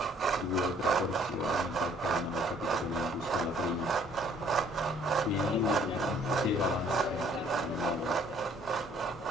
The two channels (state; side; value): normal; both; correlation 0.60